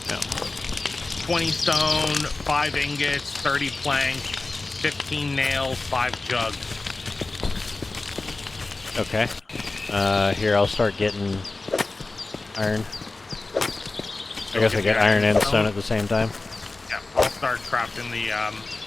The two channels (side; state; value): right; quieter; 3.4 dB